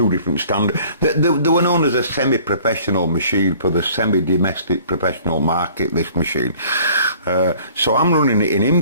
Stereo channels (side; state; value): both; inverted; correlation -0.52